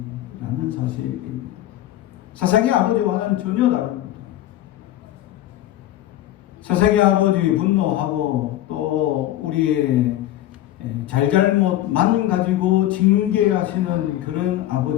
사실입니다. 세상의 아버지와는 전혀 다릅니다. 세상의 아버지 분노하고 또 우리의 잘잘못만 가지고 징계하시는 그런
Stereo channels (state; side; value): quieter; right; 13.7 dB